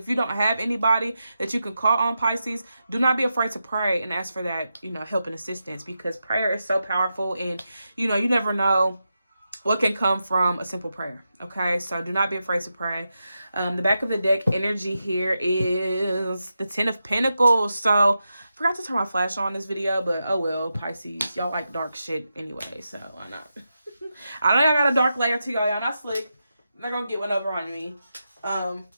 you don't have anybody that you can call on, Pisces, do not be afraid to pray and ask for that, you know, help and assistance, because prayer is so powerful, and, you know, you never know what can come from a simple prayer. Okay, so do not be afraid to pray. The back of the deck energy here is the Ten of Pentacles. So I forgot to turn my flash on this video, but oh well, Pisces, y'all like dark shit anyway, so why not? I know y'all got a dark layer to y'all. Y'all not slick. I'm not gonna get one over on me.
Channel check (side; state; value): both; inverted; correlation -0.88